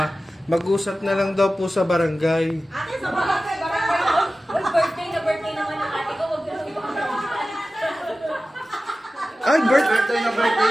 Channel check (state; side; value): normal; both; correlation 0.95